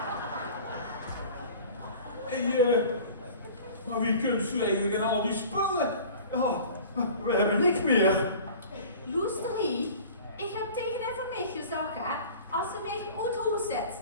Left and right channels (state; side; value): inverted; both; correlation -0.42